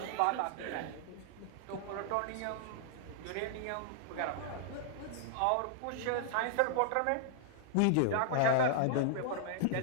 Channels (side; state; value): both; different; correlation -0.01